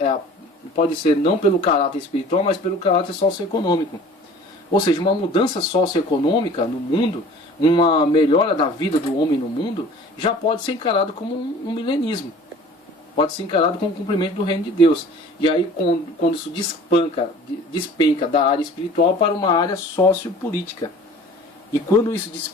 pode ser não pelo caráter espiritual, mas pelo caráter socioeconômico. Ou seja, uma mudança socioeconômica no mundo, uma melhora da vida do homem no mundo, já pode ser encarado como um milenismo. Pode ser encarado como um cumprimento do reino de Deus. E aí quando isso despenca da área espiritual para uma área sociopolítica. E quando isso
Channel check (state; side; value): normal; both; correlation 0.46